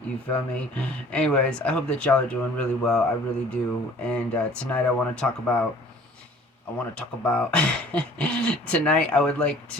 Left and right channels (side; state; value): both; normal; correlation 0.51